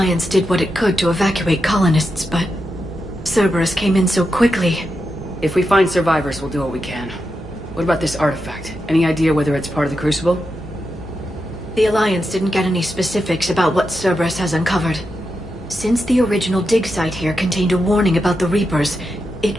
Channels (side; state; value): both; normal; correlation 0.87